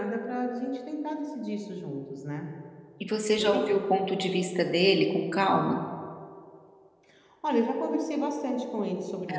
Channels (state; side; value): identical; both; correlation 1.00